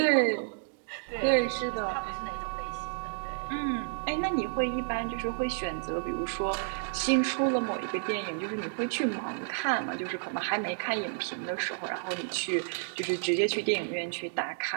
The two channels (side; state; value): left; silent; digital silence